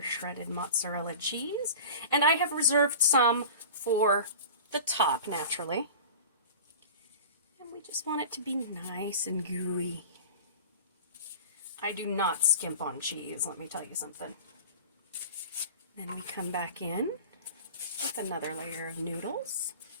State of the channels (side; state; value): both; inverted; correlation -0.36